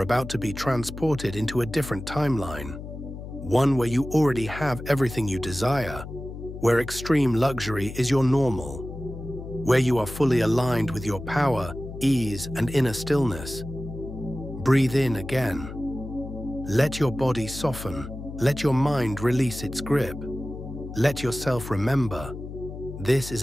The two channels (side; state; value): left; noise; hum, 10 dB below the sound